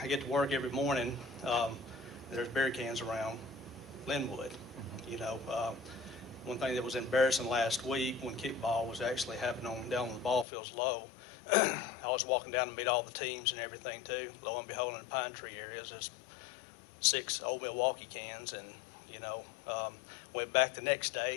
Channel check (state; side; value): drops out; right; at 10.5 s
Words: get to work every morning. There's beer cans around Linwood. You know, one thing that was embarrassing last week when kickball was actually happening down on the ball fields low, I was walking down to meet all the teams and everything too. Lo and behold, in the pine tree areas, there's 6 Old Milwaukee cans, and you know, went back the next